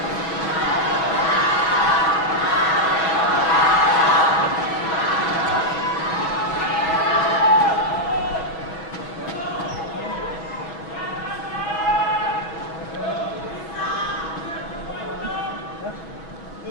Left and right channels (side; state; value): right; late; 6.2 ms